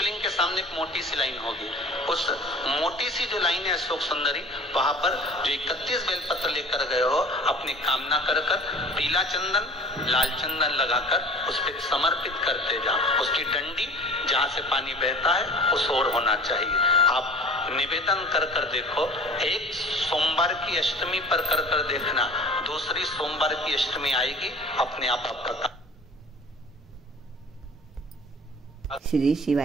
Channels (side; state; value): both; normal; correlation 0.43